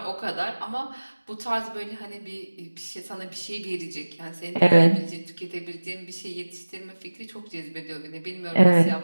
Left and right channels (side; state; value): both; inverted; correlation -1.00